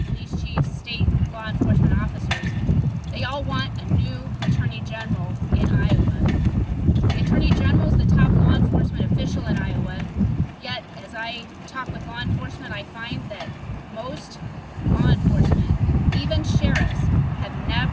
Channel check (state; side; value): identical; both; correlation 1.00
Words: police chiefs, state law enforcement officers, they all want a new Attorney General in Iowa. The Attorney General is the top law enforcement official in Iowa, yet as I talk with law enforcement, I find that most law enforcement, even sheriffs, have